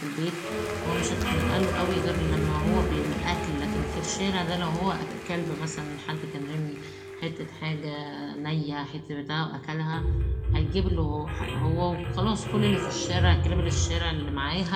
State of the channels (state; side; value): identical; both; correlation 1.00